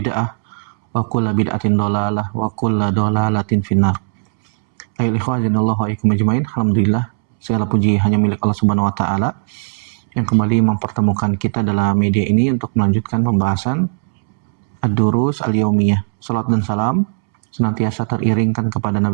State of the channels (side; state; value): left; silent; 68 dB below the other